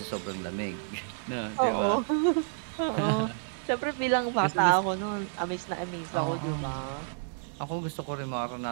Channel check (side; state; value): left; silent; digital silence